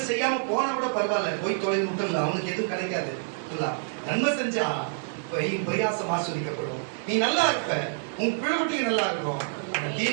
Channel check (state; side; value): silent; left; digital silence